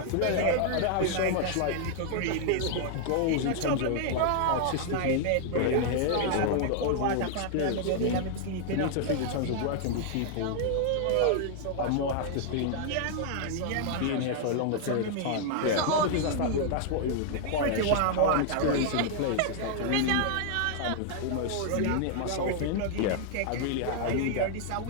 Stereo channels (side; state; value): both; different; correlation -0.01